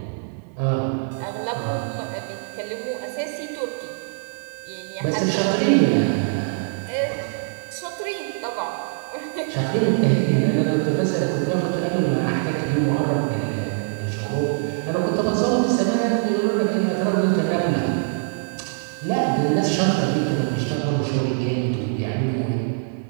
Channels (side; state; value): left; silent; 63 dB below the other